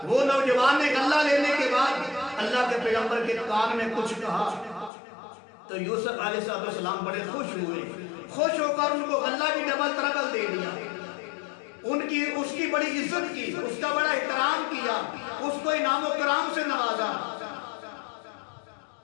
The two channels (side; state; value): right; drops out; at 4.9 s